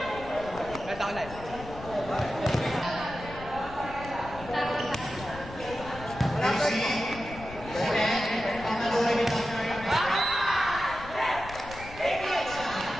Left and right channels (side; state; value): left; noise; rumble, 14 dB below the sound